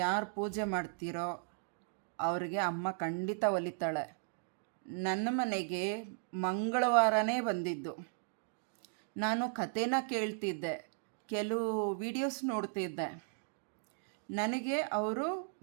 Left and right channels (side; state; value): left; silent; digital silence